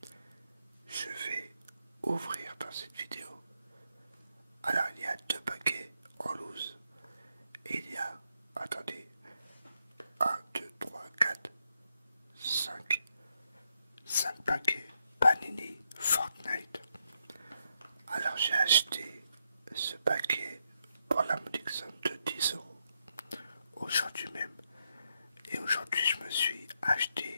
je vais ouvrir dans cette vidéo. Alors il y a deux paquets en loose et il y a, attendez, 1, 2, 3, 4, 5 paquets Panini Fortnite. Alors j'ai acheté ce paquet pour la modique somme de 10 € aujourd'hui même. Et aujourd'hui je me suis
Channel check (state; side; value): inverted; both; correlation -0.80